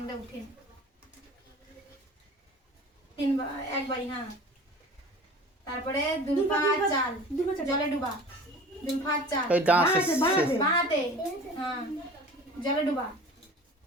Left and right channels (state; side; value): normal; both; correlation 0.41